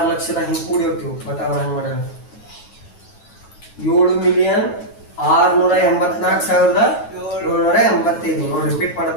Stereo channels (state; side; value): late; right; 9.2 ms